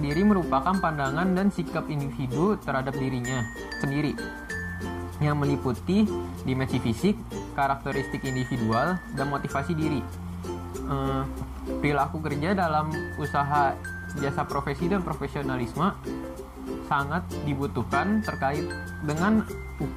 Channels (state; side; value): identical; both; correlation 1.00